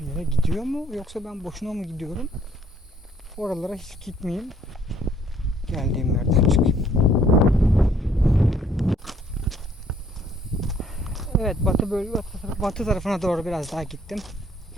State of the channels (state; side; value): normal; both; correlation 0.62